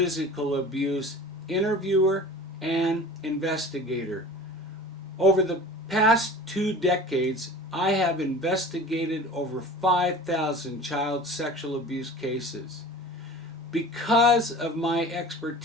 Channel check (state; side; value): normal; both; correlation 0.40